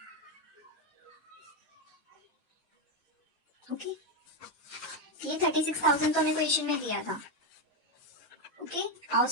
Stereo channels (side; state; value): both; normal; correlation 0.07